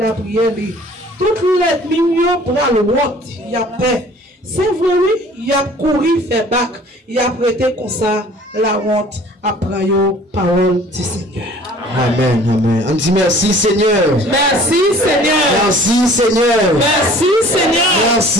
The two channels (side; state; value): both; normal; correlation 0.50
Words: prière li. Toutes les millions pour la honte, il y a paix. C'est vrai, oui, il y a couru, fait bac, il y a prêté comme ça la honte après la parole du Seigneur. Amen, amen. On dit merci Seigneur. Merci Seigneur. Merci Seigneur. Merci Seigneur.